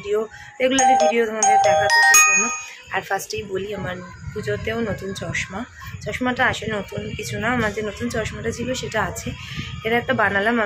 রেগুলারলি ভিডিও তোমাদের দেখাতো সেই জন্য। আর ফার্স্টেই বলি, আমার পুজোতেও নতুন চশমাটা আসে, নতুন কিছু না, আমার যে নতুন চশমাটা ছিল সেটা আছে। এটা একটা বানালাম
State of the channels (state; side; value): identical; both; correlation 1.00